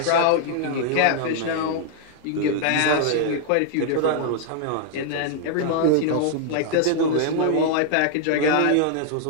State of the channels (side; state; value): both; different; correlation -0.01